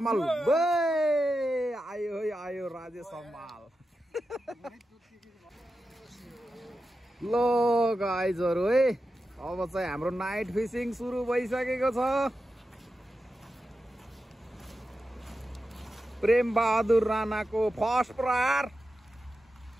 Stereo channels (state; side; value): normal; both; correlation 0.90